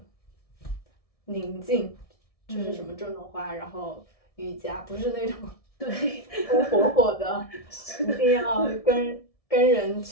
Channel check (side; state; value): right; late; 1.7 ms